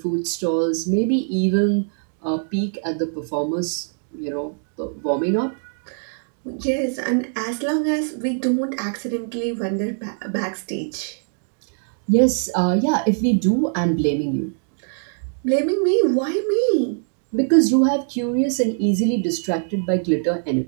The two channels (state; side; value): silent; left; 62 dB below the other